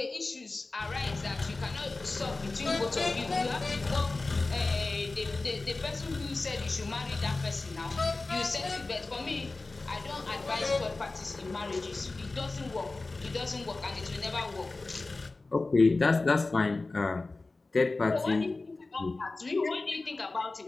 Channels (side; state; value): right; quieter; 3.4 dB